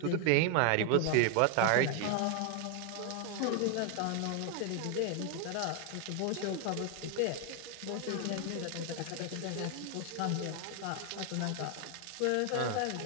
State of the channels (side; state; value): both; different; correlation 0.00